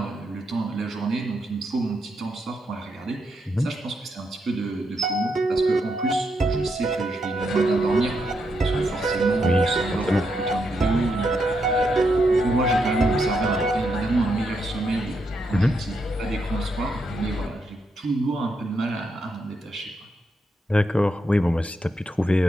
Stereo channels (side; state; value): both; normal; correlation 0.81